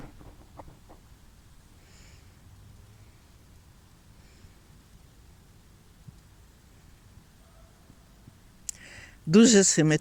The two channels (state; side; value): identical; both; correlation 1.00